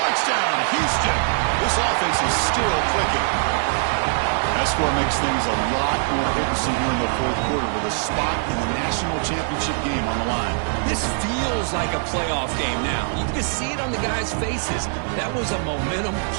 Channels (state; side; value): silent; left; 62 dB below the other